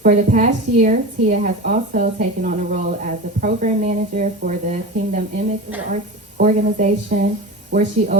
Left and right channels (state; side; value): normal; both; correlation 0.28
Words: For the past year, Tia has also taken on a role as a program manager for the Kingdom Image Arts organization, where she